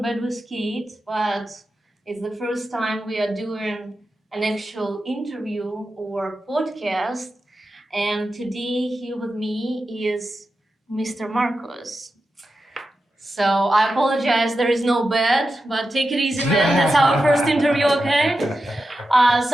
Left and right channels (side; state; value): both; normal; correlation 0.90